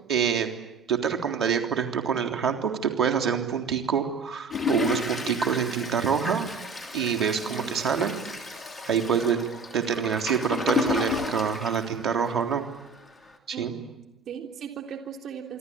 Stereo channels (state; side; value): quieter; left; 4.8 dB